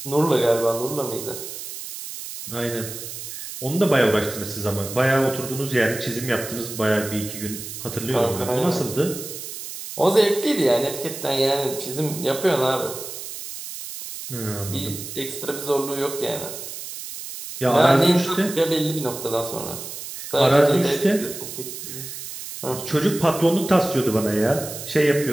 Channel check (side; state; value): right; noise; hiss, 10 dB below the sound